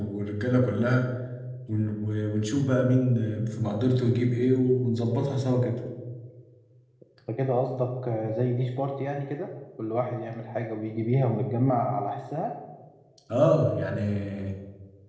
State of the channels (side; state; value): both; identical; correlation 1.00